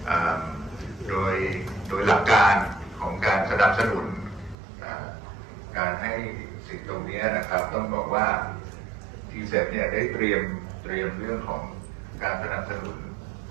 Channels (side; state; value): left; drops out; at 4.5 s